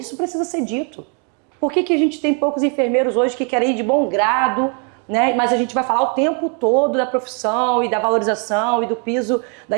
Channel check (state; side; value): quieter; left; 39.1 dB